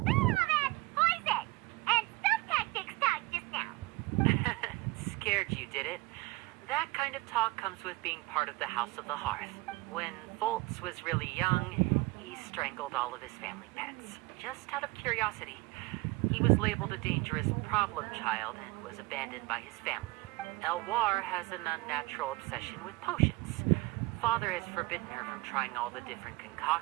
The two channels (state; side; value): quieter; left; 22.3 dB